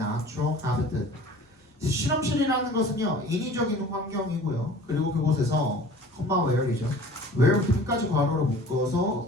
habitat. 실험실이라는 것은요, 인위적인 환경이고요. 그리고 그곳에서 where이죠. where 끝까지 괄호로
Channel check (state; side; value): normal; both; correlation 0.45